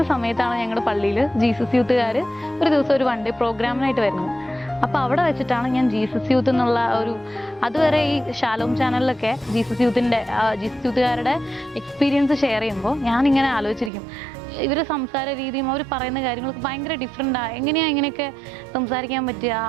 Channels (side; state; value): left; drops out; at 13.9 s